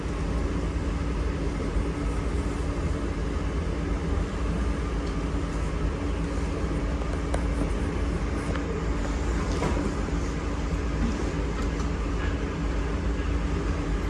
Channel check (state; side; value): identical; both; correlation 1.00